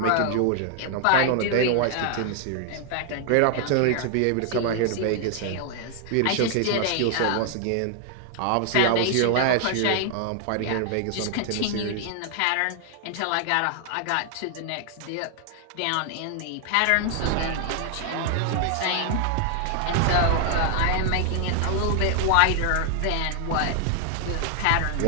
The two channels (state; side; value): different; both; correlation 0.00